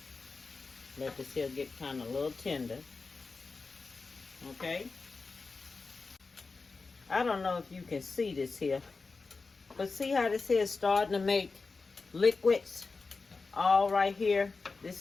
Let this here get kind of a little tender. Okay? I don't know if you can see this here. But see how this here is starting to make liquids all right here? This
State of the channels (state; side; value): quieter; right; 4.1 dB